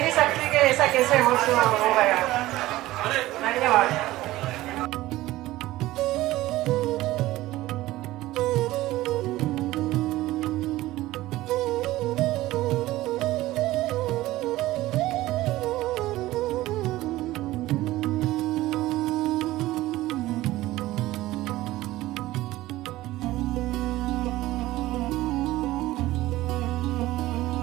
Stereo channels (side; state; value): left; quieter; 16.9 dB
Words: नहीं सकती कि ऐसा कैसे हो गया। धन्यवाद।